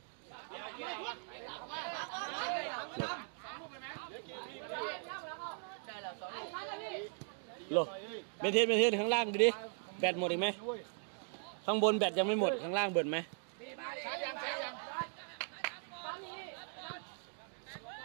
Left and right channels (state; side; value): silent; left; 52 dB below the other